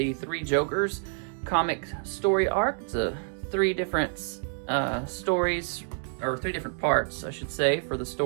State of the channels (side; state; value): left; silent; 59 dB below the other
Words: Three Jokers comic story arc. It's three different stories, or three different parts, I should say, for the